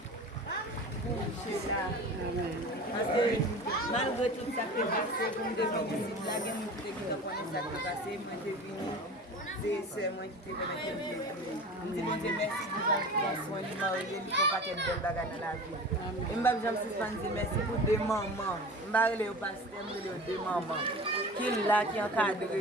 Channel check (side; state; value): both; normal; correlation 0.36